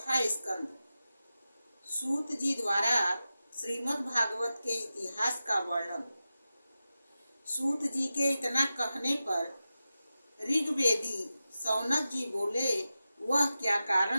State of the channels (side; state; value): both; inverted; correlation -0.93